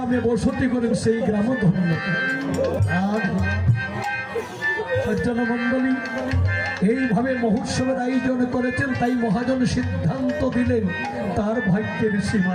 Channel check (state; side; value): identical; both; correlation 1.00